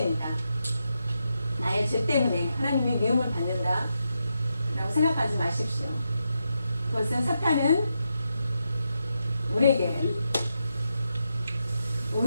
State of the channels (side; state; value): both; inverted; correlation -0.85